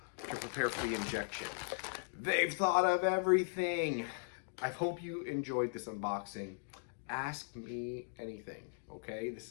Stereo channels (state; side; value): silent; right; digital silence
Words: to prepare for the injection. They've thought of everything. I hope you enjoyed this unboxing. Ask me anything, okay? This